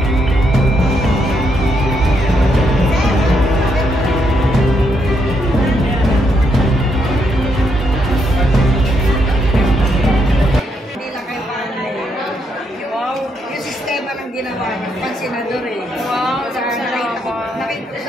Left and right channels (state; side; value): normal; both; correlation 0.77